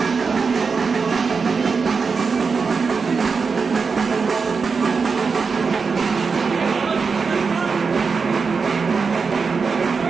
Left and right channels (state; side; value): quieter; left; 5.1 dB